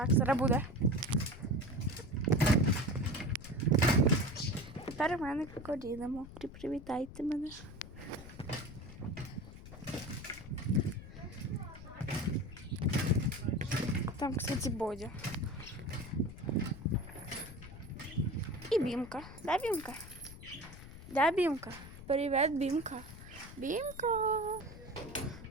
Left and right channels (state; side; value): noise; left; rumble, 14 dB below the sound